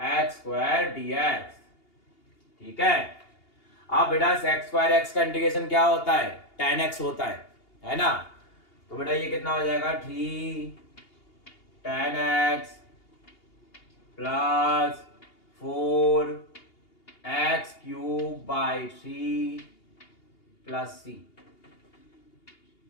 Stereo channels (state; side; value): late; right; 2.8 ms